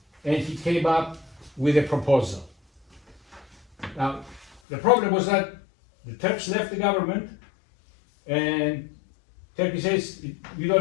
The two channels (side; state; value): right; drops out; at 4.6 s